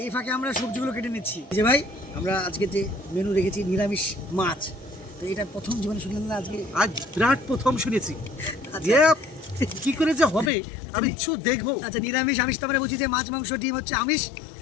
এই ফাঁকে আমরা সবজিগুলো কেটে নিচ্ছি। যে ভাই, আমরা আজকে যে মেনু রেখেছি নিরামিষ মাছ, তো এটা প্রথম জীবনে শুনলেন না? আজকে আজ বিরাট প্রথম শুনেছি আচ্ছা যে কি করে যে হবে আমি কিছু দেখবো। আচ্ছা, নিরামিষ আমিষ তো আমরা বুঝি যে মাছ মাংস ডিম হচ্ছে আমিষ,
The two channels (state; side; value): drops out; right; at 10.5 s